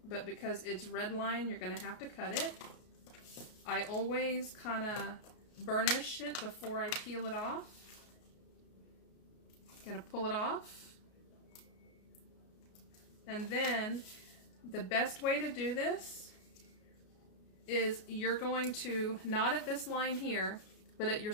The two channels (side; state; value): right; late; 33 ms